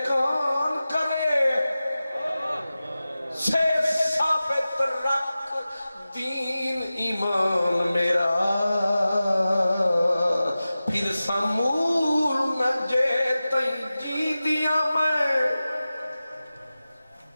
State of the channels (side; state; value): both; inverted; correlation -0.95